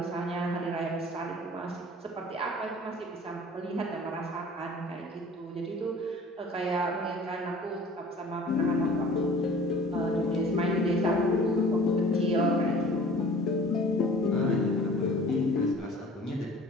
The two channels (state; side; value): normal; both; correlation 0.47